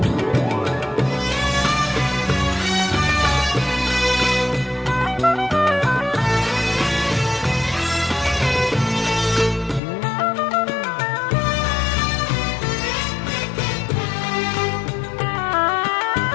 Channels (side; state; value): right; drops out; at 9.8 s